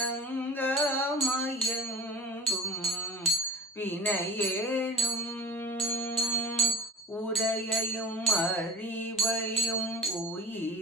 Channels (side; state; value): both; normal; correlation 0.34